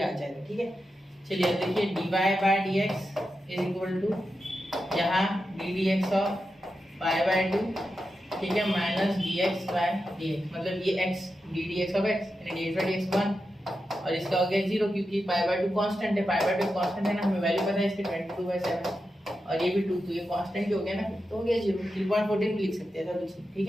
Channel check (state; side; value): normal; both; correlation 0.89